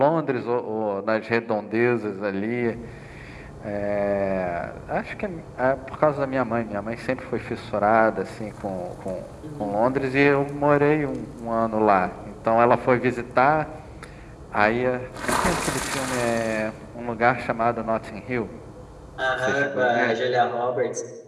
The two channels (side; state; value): both; identical; correlation 1.00